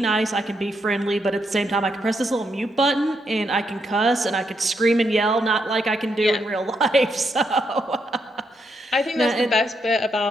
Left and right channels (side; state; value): both; normal; correlation 0.79